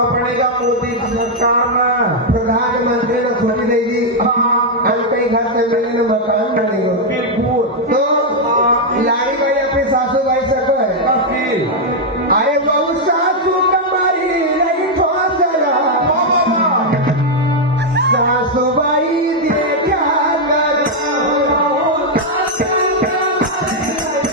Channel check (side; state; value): both; normal; correlation -0.01